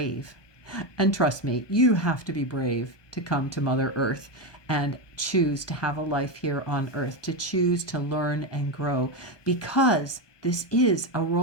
And trust me, you have to be brave to come to Mother Earth and choose to have a life here on Earth, to choose to learn and grow, because this is a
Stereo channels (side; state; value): right; late; 1.2 ms